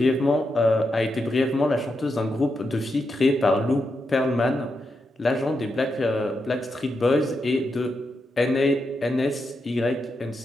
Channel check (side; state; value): both; normal; correlation 0.85